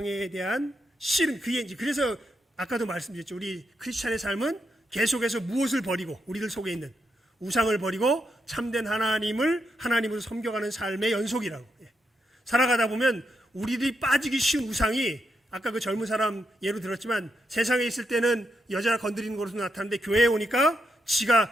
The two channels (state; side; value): normal; both; correlation 0.82